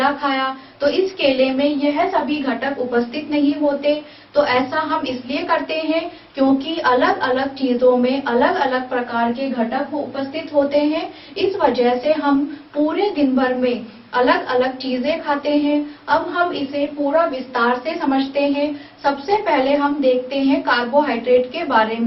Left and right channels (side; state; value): both; identical; correlation 1.00